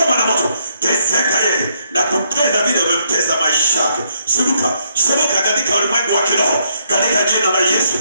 moto, teseka yeye na kupenda vile umemtesa maisha yake. Shuka katika ulimwengu wa kiroho, katika jina la Yesu,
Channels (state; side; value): inverted; both; correlation -0.72